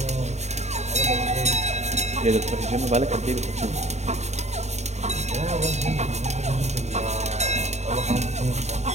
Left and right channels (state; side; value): late; left; 0.32 ms